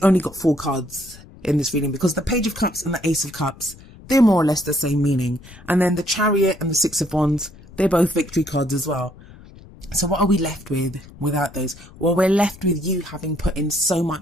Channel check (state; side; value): noise; left; rumble, 21 dB below the sound